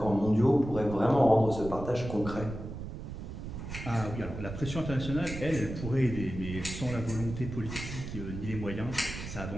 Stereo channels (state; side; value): noise; right; rumble, 8 dB below the sound